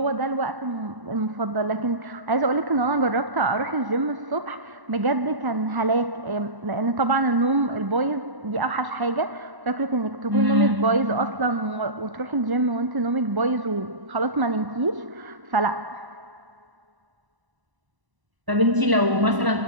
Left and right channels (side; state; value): left; late; 1.0 ms